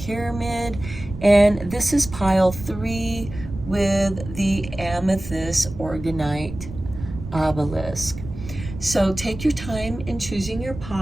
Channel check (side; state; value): right; noise; rumble, 11 dB below the sound